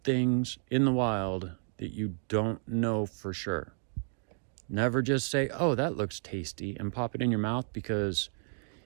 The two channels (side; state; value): left; silent; 57 dB below the other